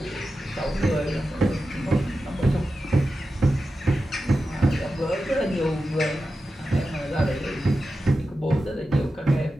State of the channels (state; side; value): normal; both; correlation 0.92